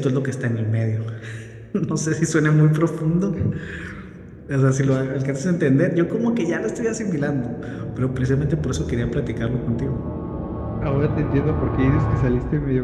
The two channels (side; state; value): both; identical; correlation 1.00